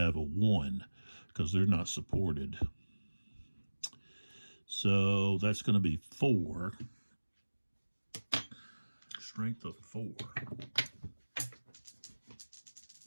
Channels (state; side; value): inverted; both; correlation -1.00